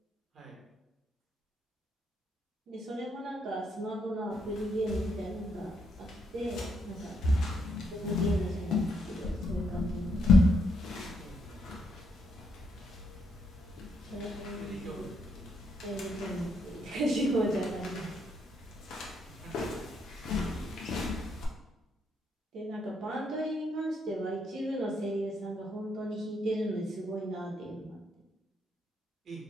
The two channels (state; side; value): normal; both; correlation 0.76